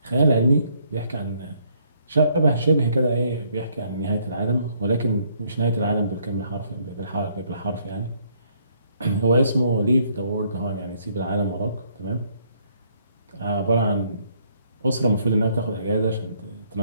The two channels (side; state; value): both; inverted; correlation -0.68